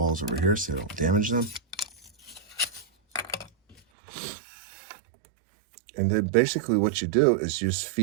over here so they don't damage them. And then basically what you do is you just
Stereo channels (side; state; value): left; drops out; at 3.8 s